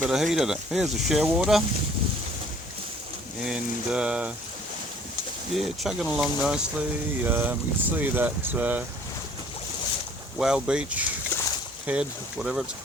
bit of heat in it. Here's the shearwater, and yeah, chugging along nicely. You can see that Whale Beach head, whatever it's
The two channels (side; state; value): both; normal; correlation 0.55